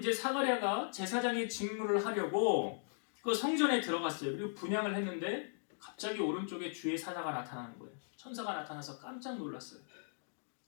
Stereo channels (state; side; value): silent; right; digital silence